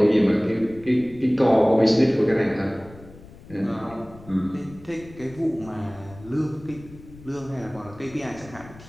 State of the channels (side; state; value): left; noise; rumble, 20 dB below the sound